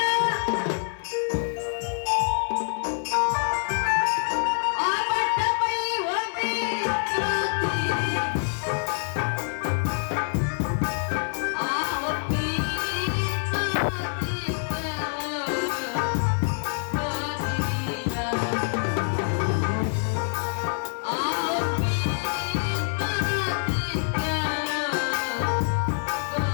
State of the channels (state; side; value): silent; right; digital silence